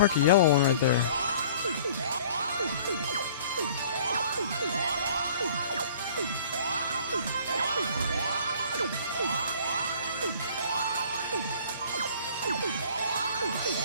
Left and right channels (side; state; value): both; inverted; correlation -0.51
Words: a yellow one right there.